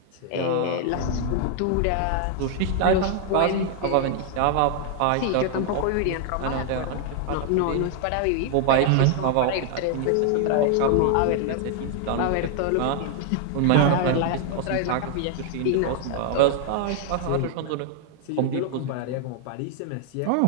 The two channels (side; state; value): both; different; correlation 0.00